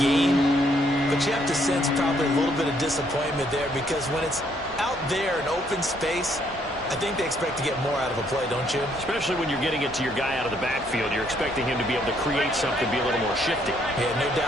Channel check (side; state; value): both; normal; correlation 0.69